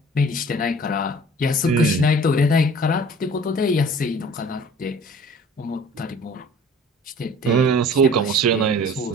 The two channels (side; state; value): both; normal; correlation 0.47